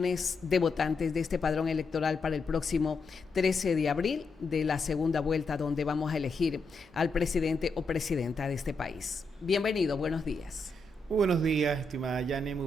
de votantes de este padrón electoral para el próximo 13 de abril de la segunda vuelta, donde vamos a elegir al presidente o presidenta de este país? Bienvenido, buenos días. Muy buenos días, estimada Yane, muy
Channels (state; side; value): quieter; right; 3.1 dB